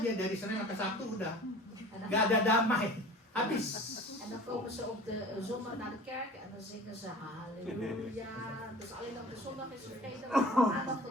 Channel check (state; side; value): normal; both; correlation 0.43